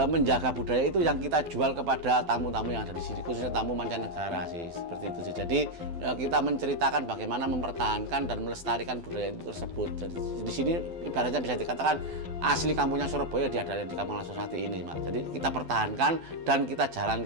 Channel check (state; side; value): late; left; 12 ms